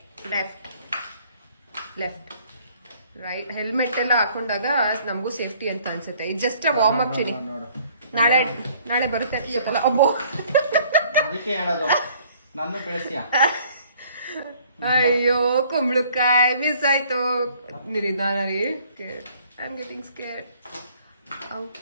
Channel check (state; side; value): inverted; both; correlation -0.58